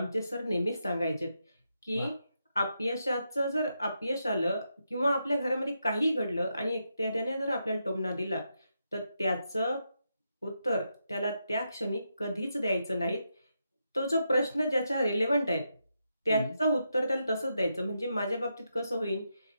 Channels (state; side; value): inverted; both; correlation -0.83